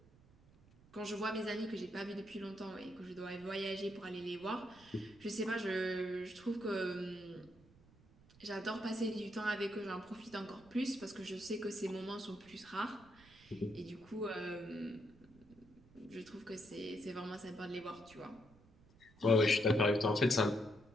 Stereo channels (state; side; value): noise; right; rumble, 26 dB below the sound